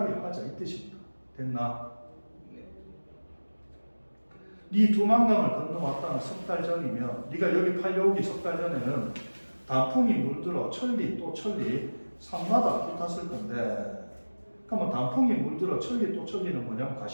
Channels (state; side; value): inverted; both; correlation -1.00